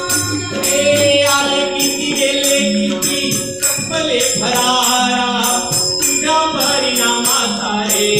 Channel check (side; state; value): left; noise; rumble, 24 dB below the sound